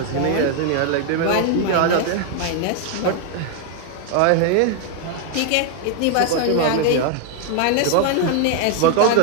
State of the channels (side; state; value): both; different; correlation 0.00